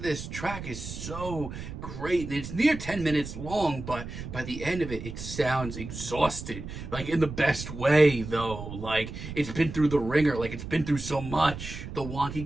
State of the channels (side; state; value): right; noise; rumble, 9 dB below the sound